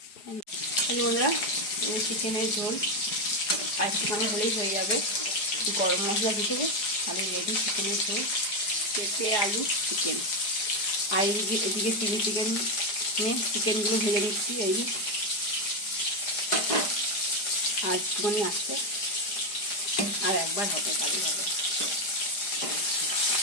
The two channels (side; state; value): right; late; 4.9 ms